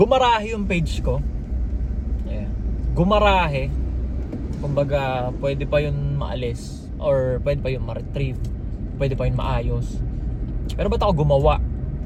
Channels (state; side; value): identical; both; correlation 1.00